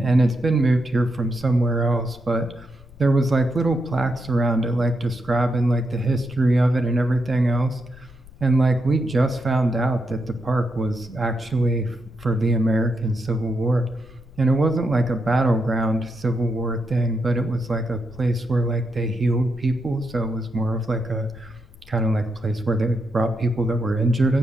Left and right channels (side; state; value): left; noise; rumble, 21 dB below the sound